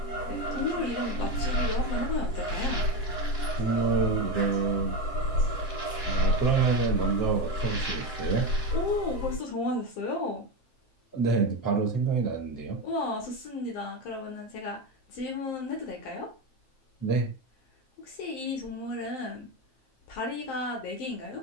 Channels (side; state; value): right; late; 7.7 ms